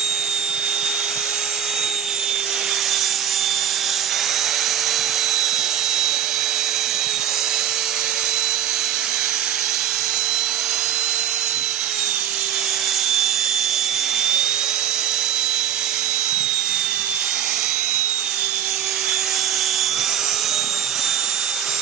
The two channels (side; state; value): left; quieter; 9.2 dB